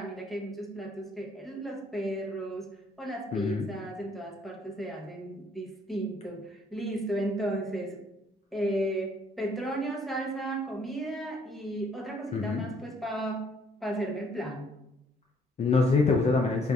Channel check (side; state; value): both; normal; correlation 0.64